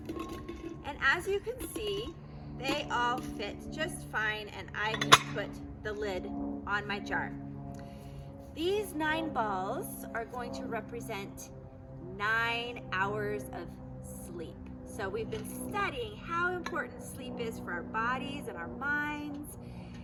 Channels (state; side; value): identical; both; correlation 1.00